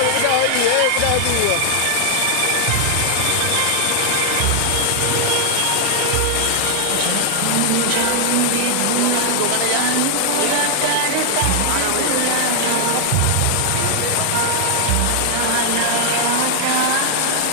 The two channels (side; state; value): both; different; correlation 0.00